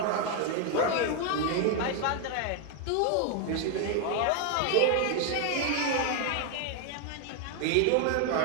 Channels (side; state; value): both; different; correlation 0.01